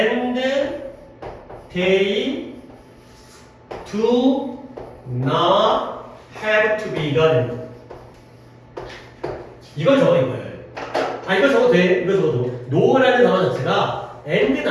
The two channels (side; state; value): both; identical; correlation 1.00